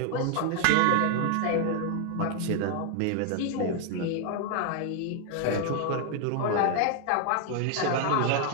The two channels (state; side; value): different; both; correlation 0.00